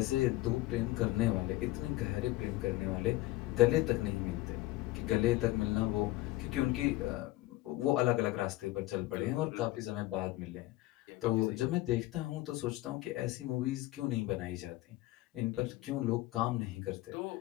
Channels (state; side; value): quieter; right; 17.9 dB